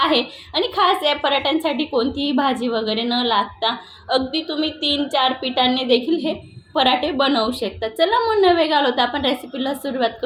आणि खास या पराठ्यांसाठी कोणतीही भाजी वगैरे न लागता अगदी तुम्ही 3-4 पिठांनी देखील हे पराठे बनवू शकता। चला मग न वेळ घालवता आपण रेसिपीला सुरुवात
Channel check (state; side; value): identical; both; correlation 1.00